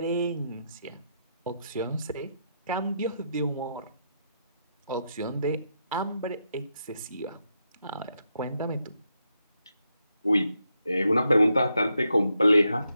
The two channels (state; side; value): inverted; both; correlation -0.82